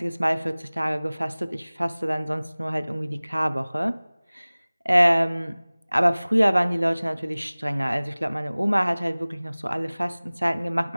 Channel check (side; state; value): both; inverted; correlation -1.00